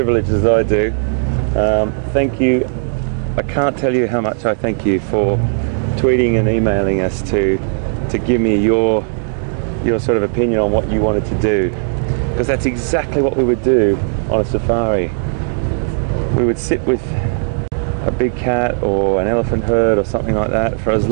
as I do. Thank you. I can't tell you how much I thank you for tweeting and emailing us to give me your sort of opinion on what you wanted to do. Because that's exactly what we would do on a safari. We would sit with a big cat or an elephant herd or something like that for as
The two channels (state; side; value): silent; left; digital silence